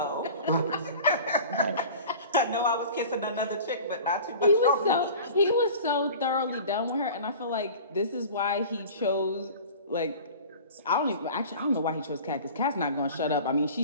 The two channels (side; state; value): both; inverted; correlation -0.41